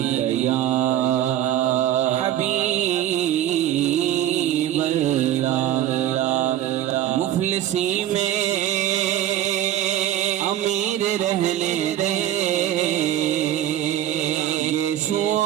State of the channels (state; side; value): quieter; left; 12.0 dB